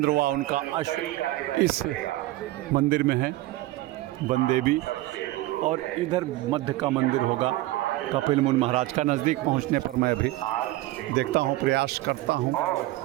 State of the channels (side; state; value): left; quieter; 17.5 dB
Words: व उनका अश्व इस मंदिर में है, वनदेवी। और इधर मध्य का मंदिर होगा कपिल मुनि महाराज का। नज़दीक पहुंचने पर मैं भी देखता हूं, प्रयास करता हूं